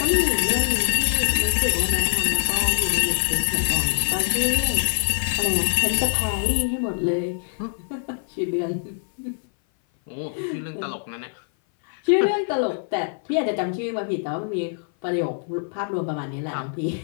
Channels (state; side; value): silent; right; 58 dB below the other